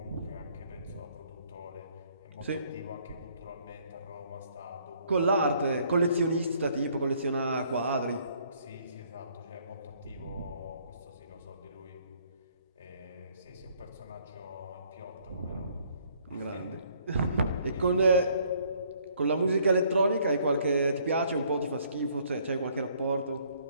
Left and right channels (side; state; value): both; inverted; correlation -0.63